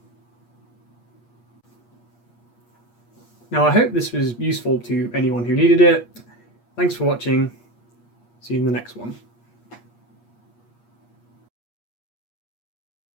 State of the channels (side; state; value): right; late; 8.4 ms